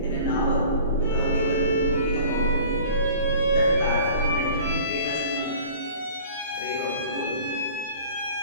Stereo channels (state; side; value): inverted; both; correlation -0.45